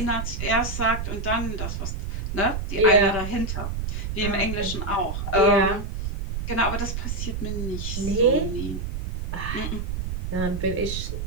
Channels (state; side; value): noise; right; rumble, 3 dB below the sound